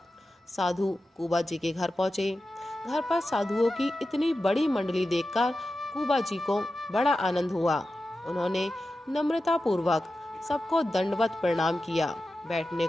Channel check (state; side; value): normal; both; correlation 0.92